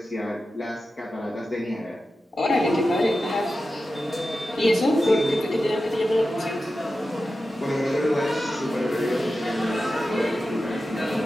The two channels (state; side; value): normal; both; correlation 0.92